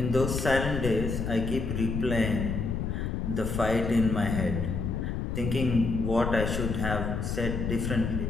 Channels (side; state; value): left; noise; rumble, 2 dB below the sound